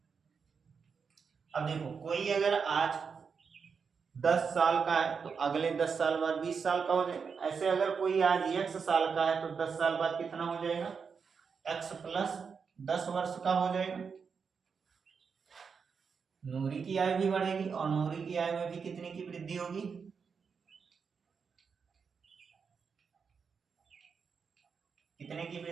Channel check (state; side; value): quieter; left; 5.8 dB